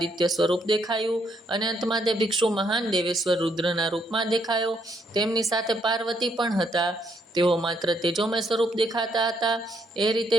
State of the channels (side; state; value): both; normal; correlation 0.73